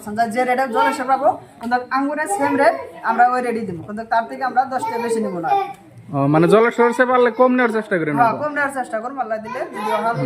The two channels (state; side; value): identical; both; correlation 1.00